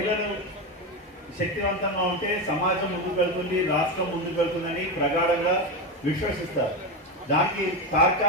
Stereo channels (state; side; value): normal; both; correlation 0.15